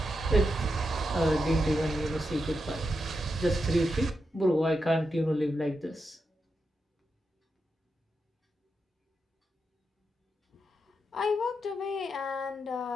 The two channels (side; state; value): both; normal; correlation 0.86